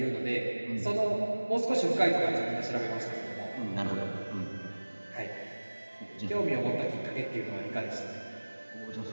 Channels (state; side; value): inverted; both; correlation -1.00